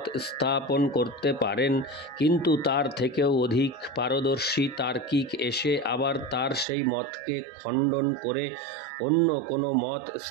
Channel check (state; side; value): drops out; left; at 6.7 s